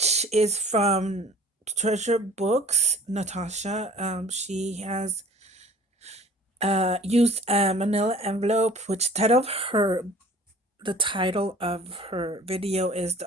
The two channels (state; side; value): normal; both; correlation 0.48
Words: is from Treasure Books. Natasha, she has used a Manila envelope, which the title of her video is the